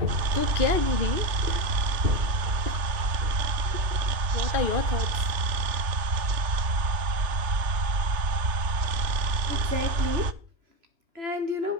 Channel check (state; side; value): late; left; 3.3 ms